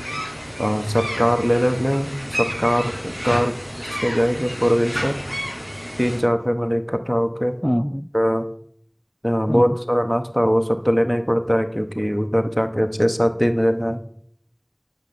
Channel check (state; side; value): identical; both; correlation 1.00